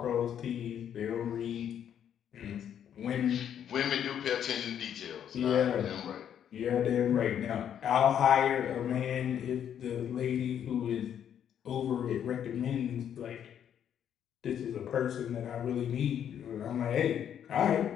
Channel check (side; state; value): right; quieter; 9.3 dB